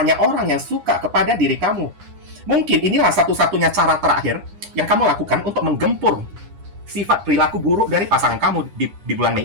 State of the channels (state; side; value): late; left; 9.9 ms